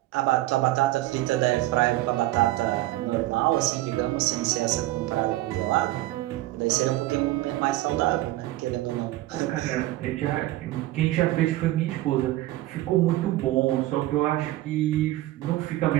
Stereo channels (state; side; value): quieter; left; 16.6 dB